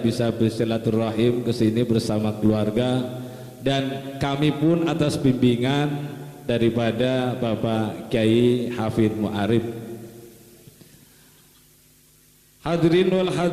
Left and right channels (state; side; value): identical; both; correlation 1.00